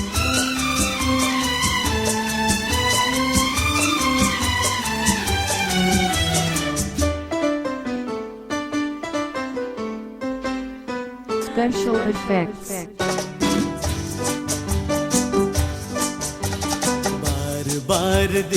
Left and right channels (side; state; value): both; identical; correlation 1.00